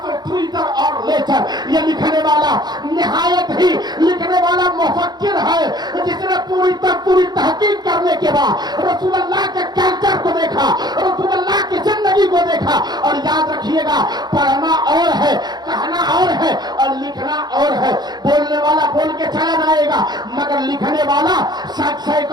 a Twitter or lecture। ये लिखने वाला निहायत ही लिखने वाला मुफक्किर है जिसने पूरी तहकीक करने के बाद रसूल अल्लाह के कल्चर को देखा, रसूल अल्लाह की जिंदगी को देखा। और याद रखिएगा पढ़ना और है, कहना और है, और लिखना और है। बोलने वाला बोल के चला जाएगा मगर लिखने वाला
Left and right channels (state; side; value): late; left; 0.20 ms